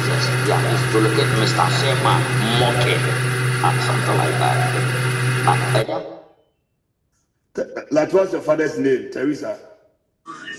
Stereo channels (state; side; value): identical; both; correlation 1.00